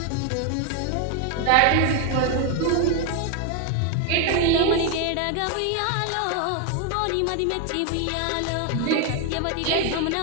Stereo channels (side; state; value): both; different; correlation 0.01